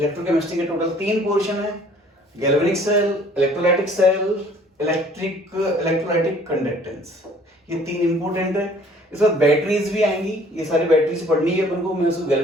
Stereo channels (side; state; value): both; normal; correlation 0.55